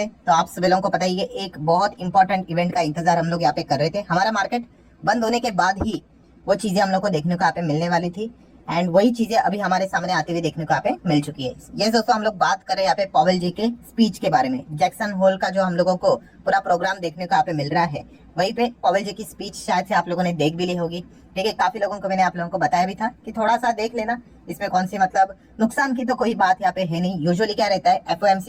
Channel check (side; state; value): both; identical; correlation 1.00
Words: तो आप सभी लोगों को पता ही है, एक बहुत इंपॉर्टेंट इवेंट का इंतजार हम लोग यहाँ पे कर रहे थे। हमारा मार्केट बंद होने के बाद ही वो चीजें हम लोग को देखने को यहाँ पे मिलने वाली थी एंड वही चीजें अभी हमारे सामने आती हुई देखने को यहाँ पे मिल चुकी है। ये दोस्तों हम लोग बात कर रहे हैं यहाँ पे पॉवेल जी के स्पीच के बारे में। जैक्सन होल का जो हम लोगों को पूरा प्रोग्राम देखने को यहाँ पे मिल रहा है, वहीं पे पॉवेल जी की स्पीच शायद से आप लोगों ने देख भी ली होगी। ठीक है, काफी लोगों को मैंने आप लोगों को बताया भी था कि थोड़ा सा देख लेना, इसमें कौन सी मतलब नुकसान की तो कोई बात यहाँ पे है नहीं। यूजुअली क्या रहता है,